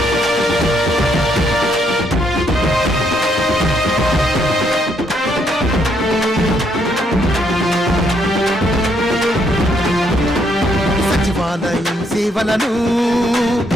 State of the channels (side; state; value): both; normal; correlation 0.72